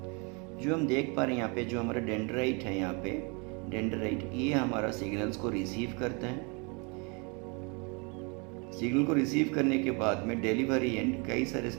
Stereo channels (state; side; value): quieter; left; 32.1 dB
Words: जो हम देख पा रहे हैं यहाँ पे, जो हमारा डेंड्राइट है, यहाँ पे डेंड्राइट, ये हमारा सिग्नल्स को रिसीव करता है। सिग्नल को रिसीव करने के बाद में डिलीवरी एंड, कई सारे